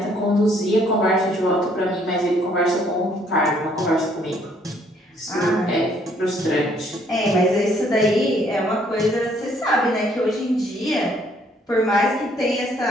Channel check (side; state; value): both; normal; correlation 0.65